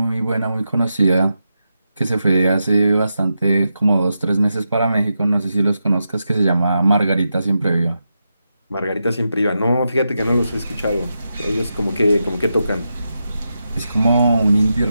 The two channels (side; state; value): both; inverted; correlation -0.87